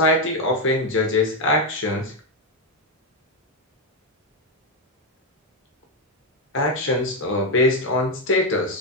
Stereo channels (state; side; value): normal; both; correlation 0.06